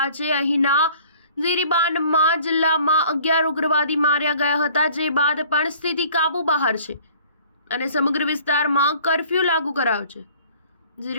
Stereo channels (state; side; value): inverted; both; correlation -0.53